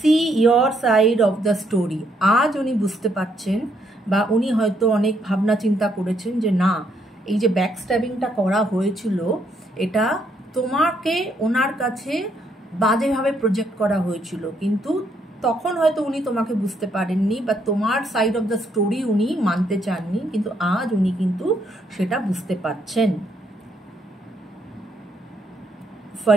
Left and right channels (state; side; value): normal; both; correlation 0.73